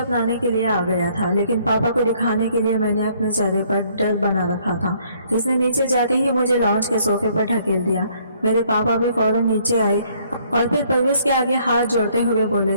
के लिए आ गया था। लेकिन पापा को दिखाने के लिए मैंने अपने चेहरे पर डर बना रखा था। इसने नीचे जाते ही मुझे लॉन्च के सोफे पर ढकेल दिया। मेरे पापा भी फौरन नीचे आए और फिर परवेज के आगे हाथ जोड़ते हुए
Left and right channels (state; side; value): inverted; both; correlation -0.64